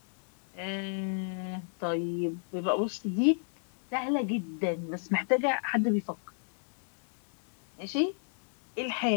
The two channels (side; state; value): right; silent; digital silence